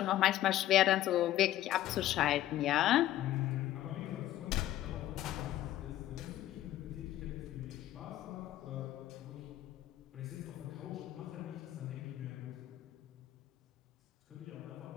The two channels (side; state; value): right; quieter; 13.7 dB